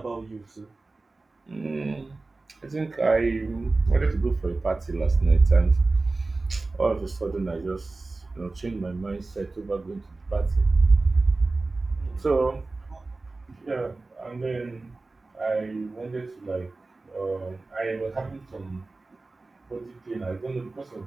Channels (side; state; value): left; quieter; 3.4 dB